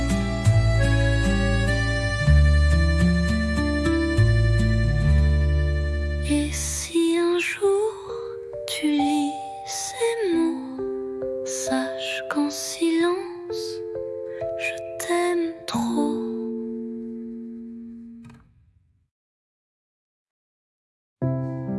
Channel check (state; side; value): identical; both; correlation 1.00